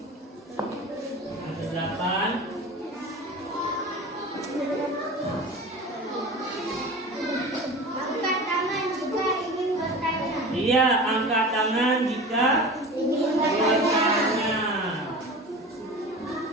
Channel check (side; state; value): both; normal; correlation 0.34